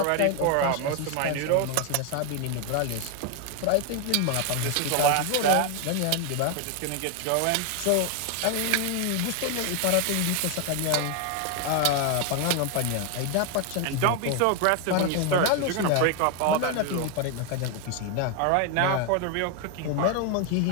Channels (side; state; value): both; different; correlation 0.01